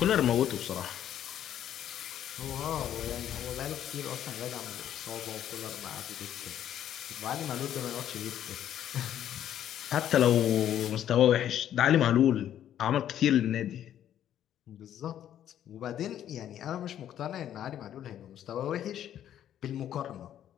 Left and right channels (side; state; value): right; quieter; 10.8 dB